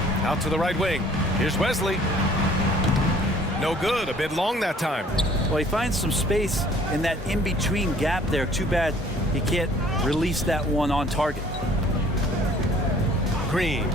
Out to the right wing. Here's Wesley. No good. A bit long that time. Well, he finds some space in that in-between gap there. Too bad he can't release that one on target. Green,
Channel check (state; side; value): normal; both; correlation 0.55